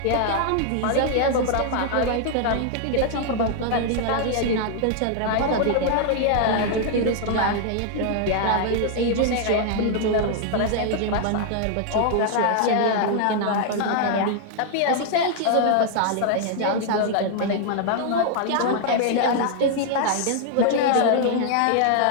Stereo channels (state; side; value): different; both; correlation 0.00